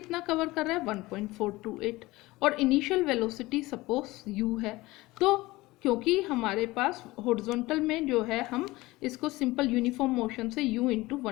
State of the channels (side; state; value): right; quieter; 19.9 dB